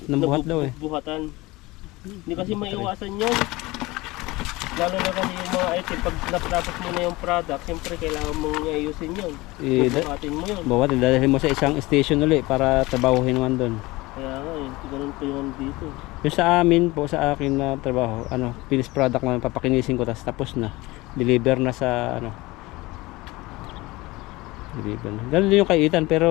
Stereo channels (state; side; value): quieter; right; 21.1 dB